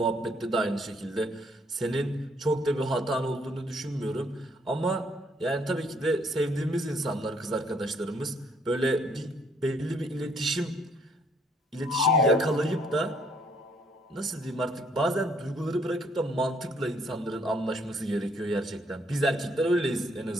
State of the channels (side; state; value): both; normal; correlation 0.66